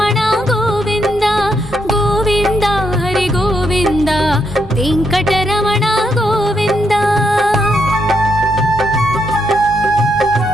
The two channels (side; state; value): left; noise; rumble, 22 dB below the sound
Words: ಗೋವಿಂದ ಗೋವಿಂದ ಹರಿ ಗೋವಿಂದ ವೆಂಕಟರಮಣ ಗೋವಿಂದ